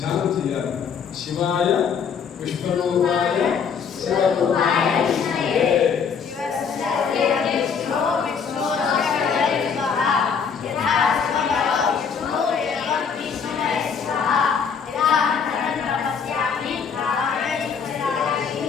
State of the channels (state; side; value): quieter; right; 6.4 dB